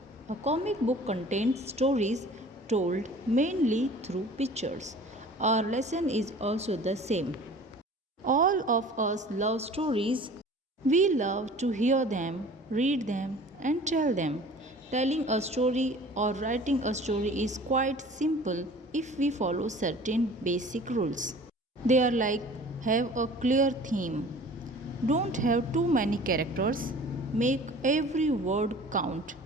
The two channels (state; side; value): normal; both; correlation 0.45